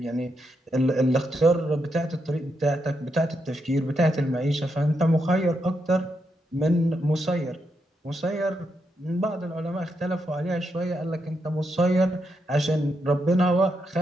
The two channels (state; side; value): normal; both; correlation 0.82